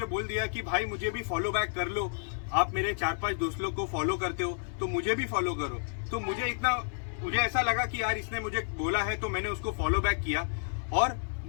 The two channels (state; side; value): silent; right; 57 dB below the other